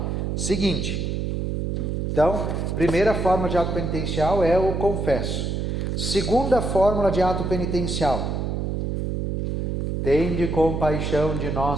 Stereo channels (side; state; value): right; noise; hum, 1 dB below the sound